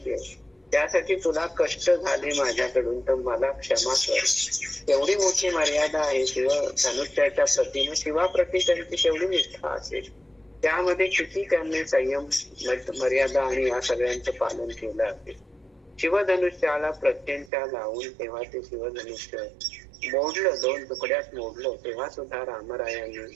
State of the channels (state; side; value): drops out; left; at 17.5 s